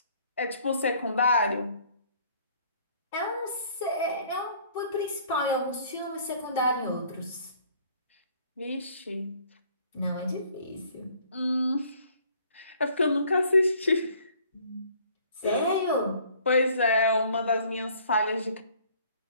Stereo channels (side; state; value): both; inverted; correlation -0.58